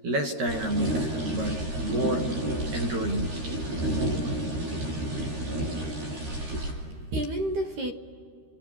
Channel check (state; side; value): late; left; 13 ms